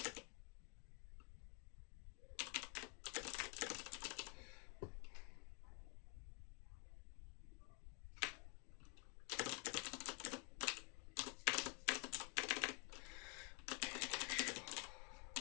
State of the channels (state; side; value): quieter; right; 34.5 dB